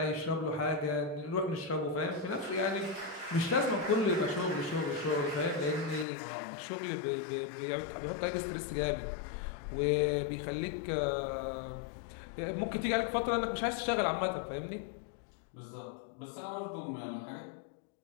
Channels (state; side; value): drops out; right; at 6.1 s